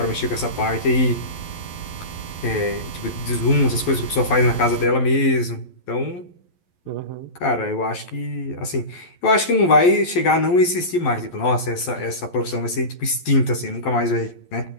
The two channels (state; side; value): late; right; 11 ms